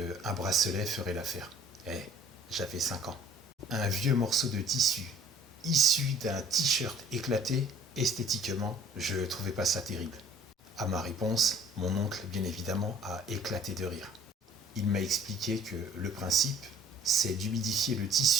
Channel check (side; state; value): both; normal; correlation 0.53